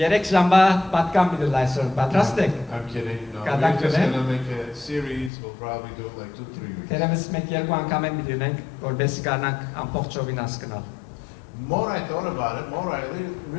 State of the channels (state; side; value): drops out; right; at 5.3 s